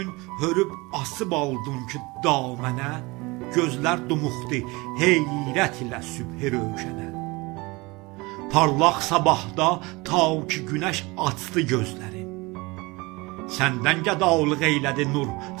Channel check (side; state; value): left; quieter; 24.2 dB